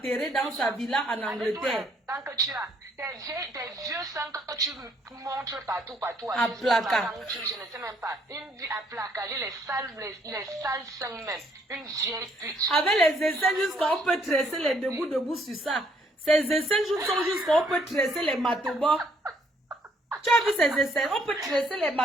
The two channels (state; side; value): normal; both; correlation 0.67